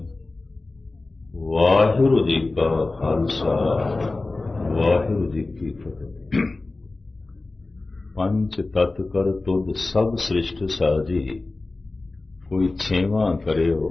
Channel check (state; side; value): quieter; right; 3.3 dB